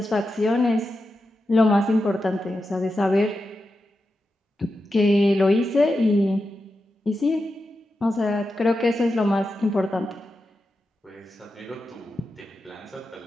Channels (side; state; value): both; normal; correlation 0.89